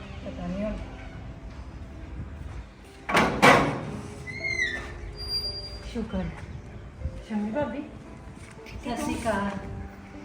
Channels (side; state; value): both; identical; correlation 1.00